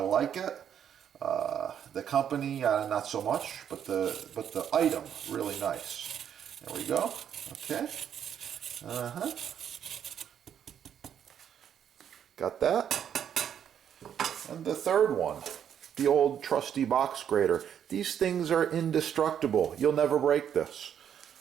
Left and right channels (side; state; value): left; quieter; 9.0 dB